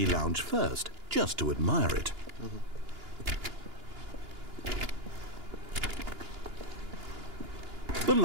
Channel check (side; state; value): left; late; 2.9 ms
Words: lounge first, just to admire it. The